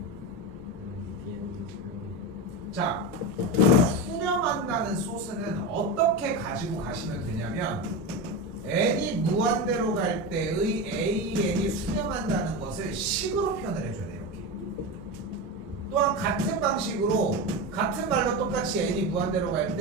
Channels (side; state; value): both; normal; correlation 0.20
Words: BN도 수렴해요. 자, 수렴한다는 소스는 어떻게 가지고 가시면 되냐면 n이 무한대로 갈 때의 AN이 수렴한다는 것을 식으로 표현을 해줘야 돼요. 이렇게. 또한 같은 방식으로 같은 말로 똑같이 n이 무한대로 갈